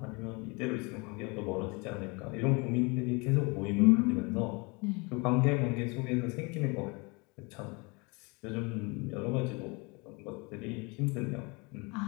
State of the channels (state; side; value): quieter; right; 29.0 dB